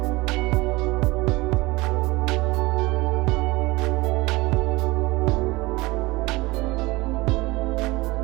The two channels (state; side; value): quieter; left; 21.9 dB